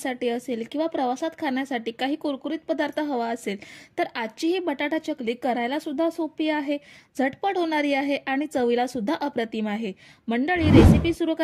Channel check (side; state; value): both; identical; correlation 1.00